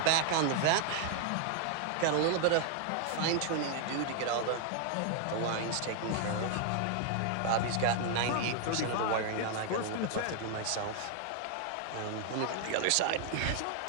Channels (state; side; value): different; both; correlation 0.00